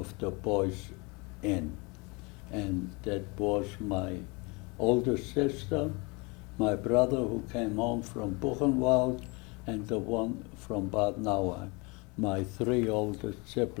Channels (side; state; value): right; quieter; 28.2 dB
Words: the boys in. And that was my older sister, my brother who came home from Buchenwald, and the one from Bad Nauheim, my 3 oldest